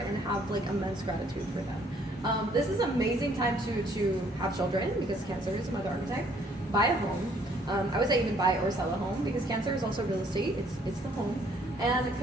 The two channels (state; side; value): normal; both; correlation 0.63